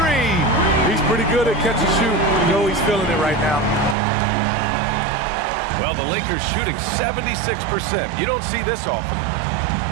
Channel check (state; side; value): drops out; left; at 4.0 s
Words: 3. He's pretty good at catch and shoot. You know he's feeling it right now. Well, the Lakers shooting 76%. You don't see this often.